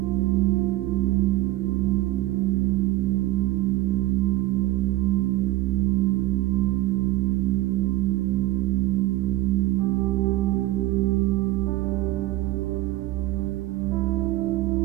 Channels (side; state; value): left; quieter; 17.6 dB